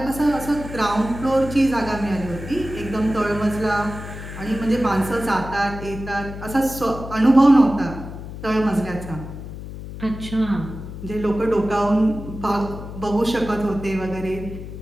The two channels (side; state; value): left; noise; hum, 10 dB below the sound